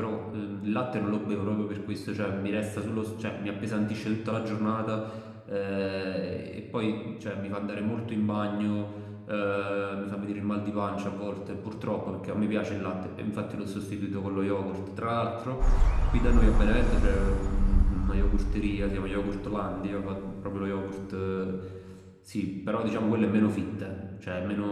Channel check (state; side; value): identical; both; correlation 1.00